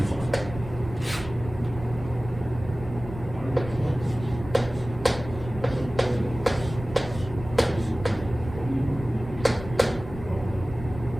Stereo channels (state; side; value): noise; right; rumble, 12 dB below the sound